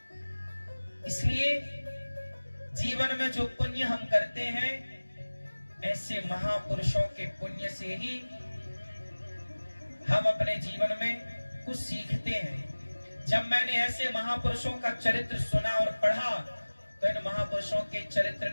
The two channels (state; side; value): inverted; both; correlation -1.00